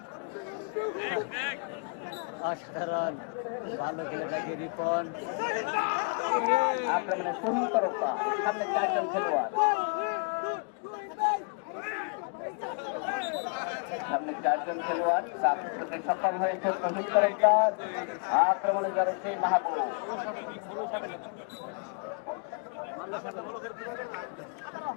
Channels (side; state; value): right; quieter; 39.2 dB